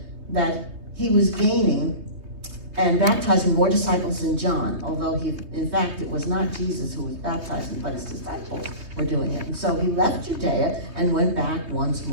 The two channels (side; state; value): left; late; 3.0 ms